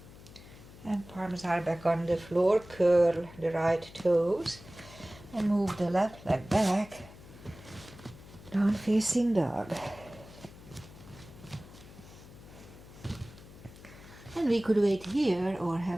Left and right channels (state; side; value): noise; left; hum, 19 dB below the sound